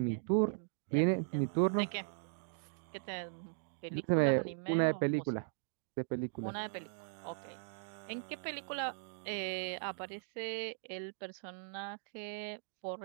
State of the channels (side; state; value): left; silent; digital silence